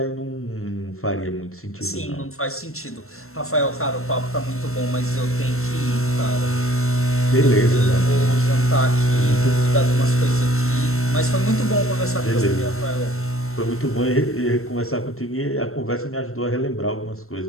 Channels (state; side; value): late; right; 0.62 ms